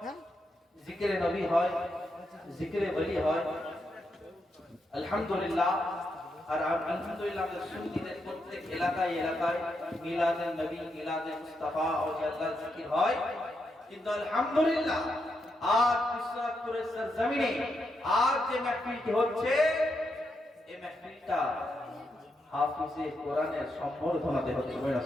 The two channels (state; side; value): normal; both; correlation 0.83